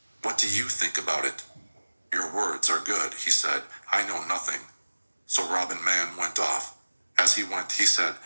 "What do you think about it?" "Your words are good," he said. "I know nothing." So Robin Man went off. As he went, he said,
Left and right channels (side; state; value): both; inverted; correlation -1.00